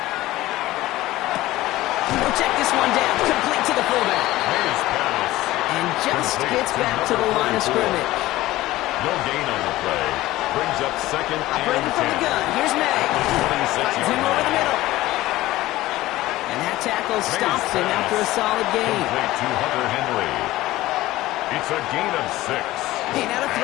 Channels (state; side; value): quieter; right; 17.0 dB